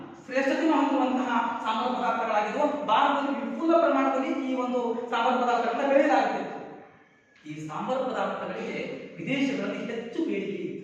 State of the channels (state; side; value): identical; both; correlation 1.00